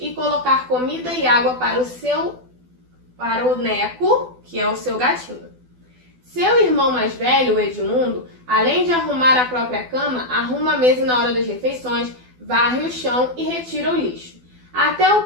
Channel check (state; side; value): late; left; 12 ms